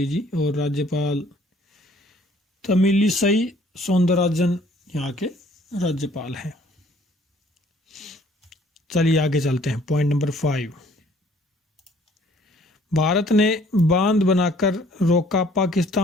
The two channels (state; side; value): normal; both; correlation 0.59